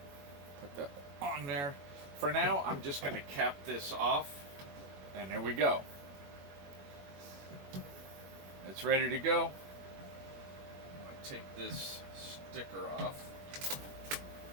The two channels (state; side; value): late; left; 21 ms